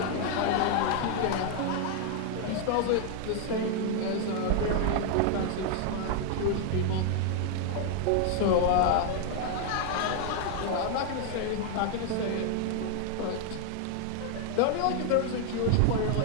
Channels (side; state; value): both; different; correlation 0.00